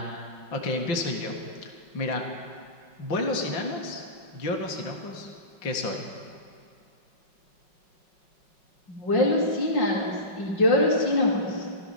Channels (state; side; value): late; right; 5.4 ms